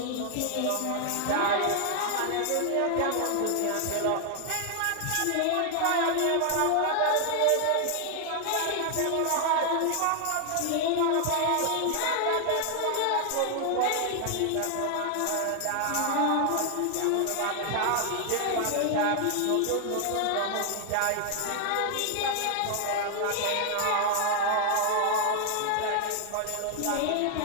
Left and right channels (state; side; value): different; both; correlation 0.00